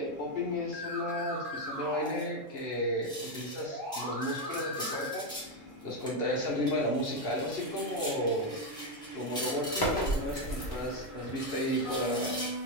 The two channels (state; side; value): normal; both; correlation 0.05